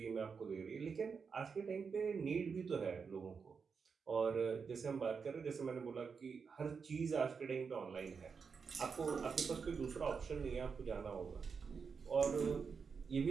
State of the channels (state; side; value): quieter; left; 5.7 dB